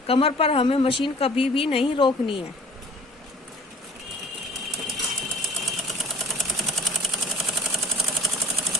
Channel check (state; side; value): normal; both; correlation 0.49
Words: कमर पर हमें मशीन कभी भी नहीं रोकनी है।